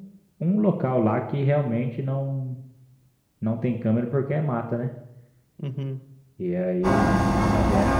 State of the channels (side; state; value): both; identical; correlation 1.00